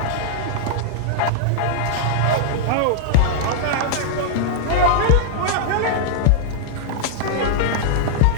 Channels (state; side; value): different; both; correlation -0.01